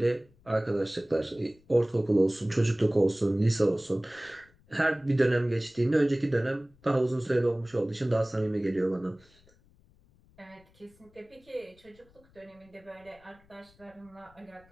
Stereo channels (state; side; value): noise; left; rumble, 30 dB below the sound